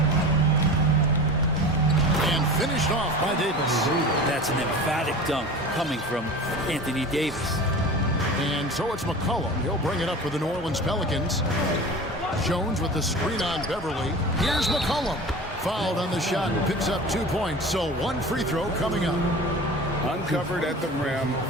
And finished off by Davis. That's an emphatic dunk coming from Anthony Davis. And so it's McCollum. He'll bring it up for the New Orleans Pelicans. Jones with the screen on Beverly. Here's McCollum. Fouled on the shot and picks up 2 points. So one free throw coming up. Uncovered at the rim,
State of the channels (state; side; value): normal; both; correlation 0.35